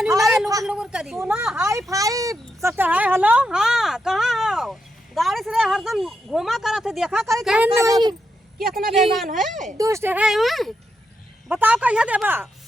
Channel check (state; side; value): normal; both; correlation 0.84